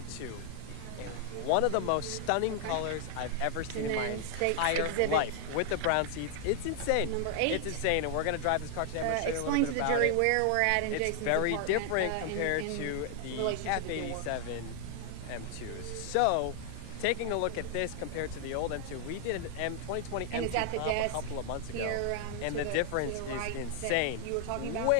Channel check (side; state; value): both; different; correlation 0.00